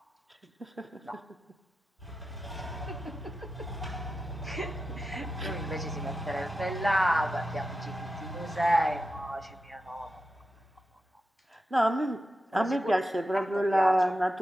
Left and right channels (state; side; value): normal; both; correlation 0.90